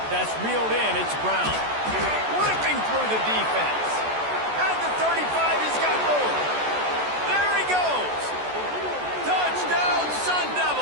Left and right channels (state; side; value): late; left; 14 ms